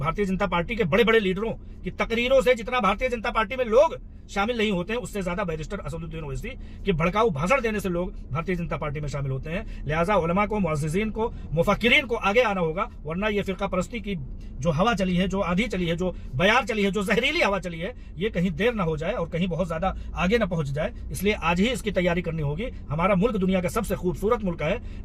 जनता पार्टी के बड़े बड़े लीडरों की तकरीरों से जितना भारतीय जनता पार्टी में लोग शामिल नहीं होते हैं, उससे ज्यादा बैरिस्टर असदुद्दीन ओवैसी के भड़काऊ भाषण देने से लोग भारतीय जनता पार्टी में शामिल होते हैं। लिहाजा उलमा को, मुअज़्ज़िज़ीन को, मुफक्किरीन को आगे आना होगा, वरना ये फिरका परस्ती की जो हवा चली है, जो आंधी चली है, जो बयार चली है, जो जहरीली हवा चली है, ये कहीं देर ना हो जाए और कहीं बहुत ज्यादा आगे ना पहुंच जाए। इसलिए आज ही इसकी तैयारी करनी होगी। हमारा मुल्क दुनिया का सबसे खूबसूरत मुल्क है।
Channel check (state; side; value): identical; both; correlation 1.00